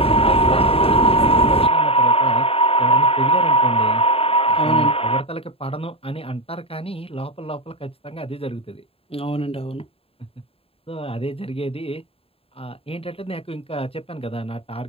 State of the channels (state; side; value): late; right; 0.27 ms